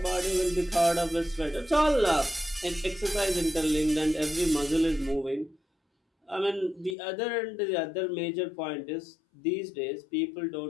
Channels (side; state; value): right; drops out; at 7.0 s